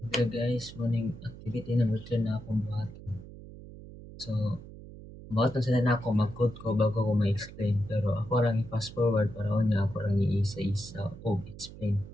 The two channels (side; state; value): right; noise; hum, 15 dB below the sound